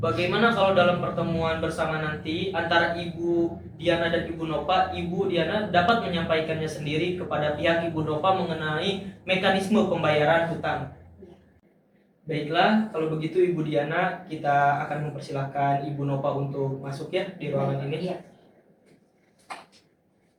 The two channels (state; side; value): identical; both; correlation 1.00